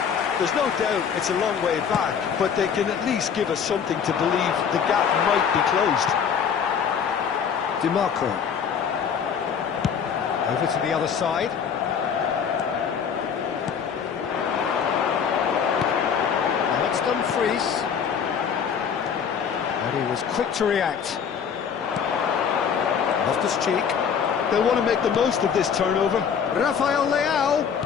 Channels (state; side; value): quieter; right; 7.2 dB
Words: There's no doubt it's a long way back, but they can at least give us something to believe the gap might be closed. DiMarco. Over to the other side. Now it's Dumfries. And he was quick to react. Loftus-Cheek. They'll want to make the most of this turnover. Rafael Leao.